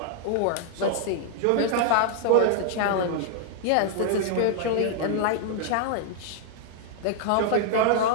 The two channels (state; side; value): different; both; correlation 0.00